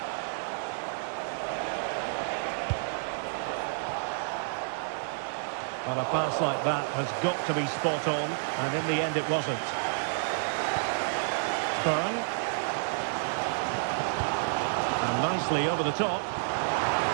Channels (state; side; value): silent; left; digital silence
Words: Well, a pass like that has got to be spot on, and in the end it wasn't. Byrne. And nicely over the top.